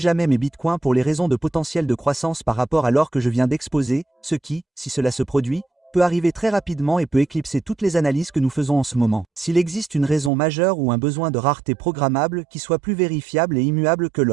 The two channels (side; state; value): left; drops out; at 10.3 s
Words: mes bitcoins pour les raisons de potentiel de croissance par rapport à l'or que je viens d'exposer, ce qui, si cela se produit, peut arriver très rapidement et peut éclipser toutes les analyses que nous faisons en ce moment. S'il existe une raison majeure ou un besoin de rareté programmable qui soit plus vérifiable et immuable que